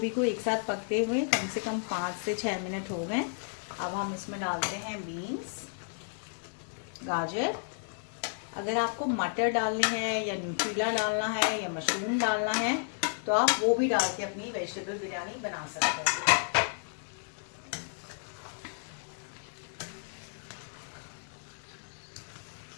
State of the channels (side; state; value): right; silent; 56 dB below the other